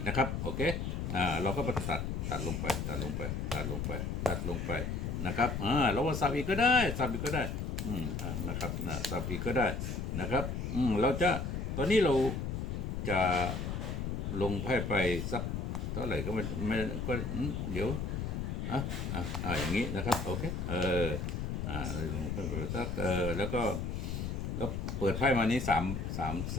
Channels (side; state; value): left; noise; rumble, 2 dB below the sound